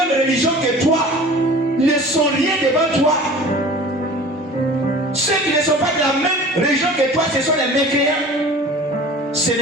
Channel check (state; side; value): normal; both; correlation 0.42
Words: religion que toi, ne sont rien devant toi. Ceux qui ne sont pas de la même religion que toi, ce sont les mécréants. Ce